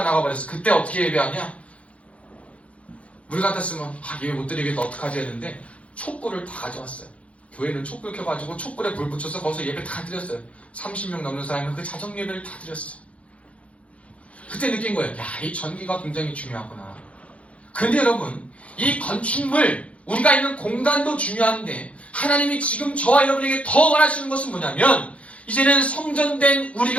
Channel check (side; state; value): right; late; 0.063 ms